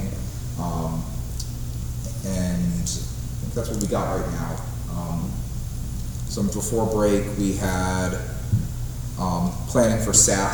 and I think that's what we got right now. So before break, we had planning for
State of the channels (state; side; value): identical; both; correlation 1.00